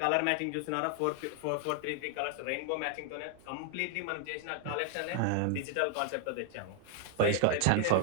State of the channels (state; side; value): different; both; correlation 0.00